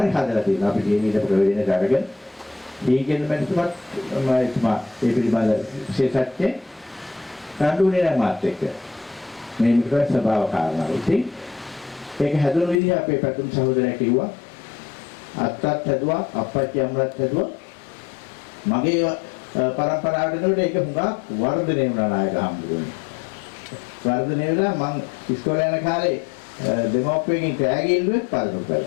හදලා තියෙනවා. අපි කියන ඊට ප්‍රවේදන කරගෙන දීගෙන මැතිතුමත් මම ඒ පිළිබඳ විශේෂඥ කඳුනේ නැහැ මාත් එක්ක. මේ මිත්‍ර ස්වභාව කාරණා. ඉතින් ඒක හැදුණු විදිහ අපේ පැතුම් සහෝදරයා කිව්වා. අත්තත් හැදුවා, අප්පච්චි අම්මලත් හැදුවා. මගේ පරම්පරාවට එනකොට ඒක හුඟක් වර්ධනය වුණා නායක හම්බුනේ. වර්ධනය වෙලා මං ඉස්කෝලේ යන කාලේ දෙමෝපියන්ගෙන් කෑගි ඉල්ලුවෙත් පාරකට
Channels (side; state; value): right; drops out; at 12.8 s